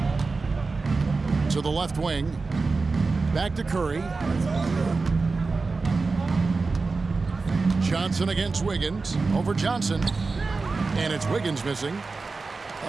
To the left wing. Back to Curry. Johnson against Wiggins. Over Johnson. And it's Wiggins missing.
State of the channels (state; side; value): quieter; left; 4.0 dB